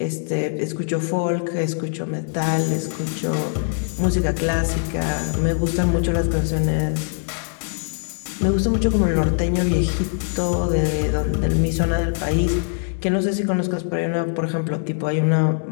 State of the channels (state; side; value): silent; right; digital silence